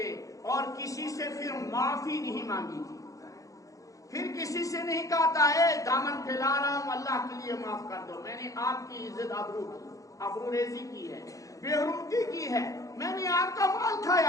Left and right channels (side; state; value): right; late; 0.16 ms